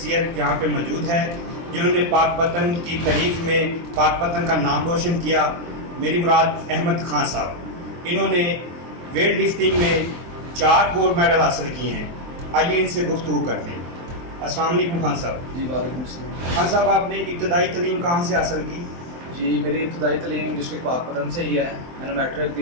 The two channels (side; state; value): left; late; 23 ms